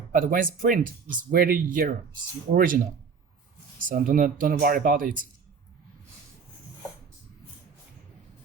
But when it's print, it's very yellow. It's original. So don't worry about it.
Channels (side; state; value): left; quieter; 5.7 dB